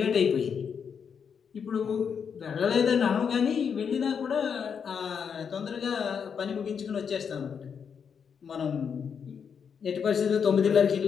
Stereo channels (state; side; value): quieter; right; 6.9 dB